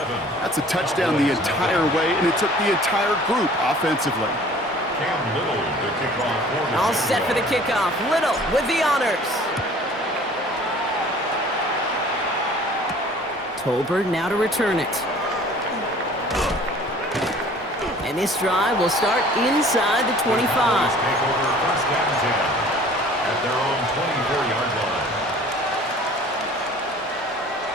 That's a touchdown the entire way, and it took the entire group offensively. All set for the kickoff. Little with the honors. Tolbert now to return it. And this drive will start inside the 25. Take over first down 10 at their own 24-yard line.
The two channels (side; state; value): both; normal; correlation 0.49